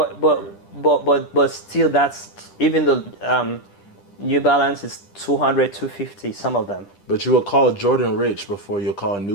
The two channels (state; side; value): late; right; 10 ms